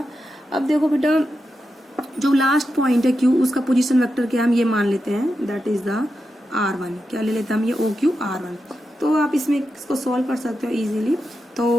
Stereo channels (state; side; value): normal; both; correlation 0.88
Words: अब देखो बेटा, जो लास्ट पॉइंट है Q, उसका पोजीशन वेक्टर क्या हम ये मान लेते हैं, दैट इज द R1। क्या ले लेते हैं हम? ये OQ R1। तो आप इसमें इसको सॉल्व कर सकते हो इजीली।